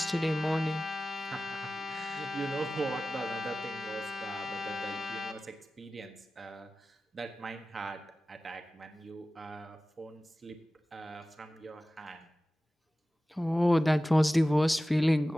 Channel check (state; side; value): normal; both; correlation 0.96